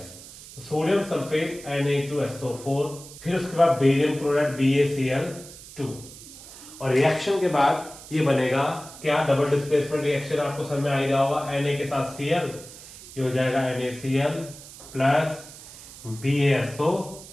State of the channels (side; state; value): right; noise; hiss, 17 dB below the sound